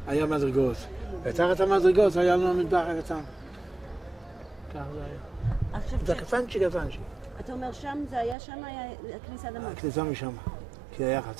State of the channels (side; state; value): left; drops out; at 8.3 s